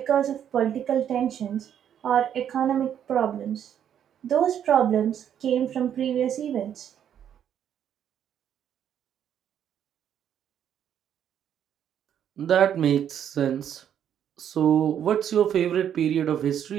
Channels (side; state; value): left; quieter; 9.4 dB